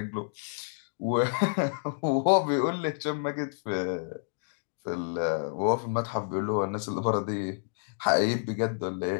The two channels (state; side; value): silent; right; digital silence